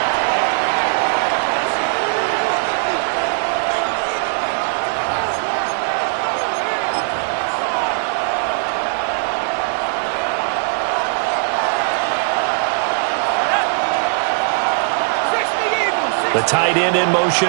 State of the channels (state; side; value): silent; left; 56 dB below the other